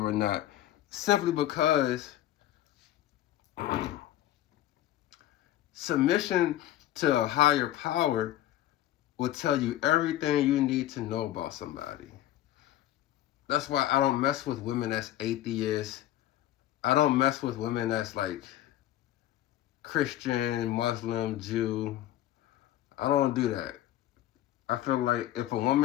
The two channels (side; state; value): right; quieter; 13.5 dB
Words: or not, simply because submission to a higher power will tell you everything you need to know about somebody. That's why I don't mess with women that's atheists. I don't mess with women that's like Christian, Muslim, Jew. I don't do that. I feel like if a